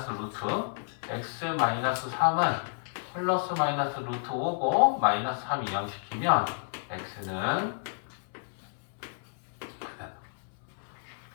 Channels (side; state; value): right; silent; 57 dB below the other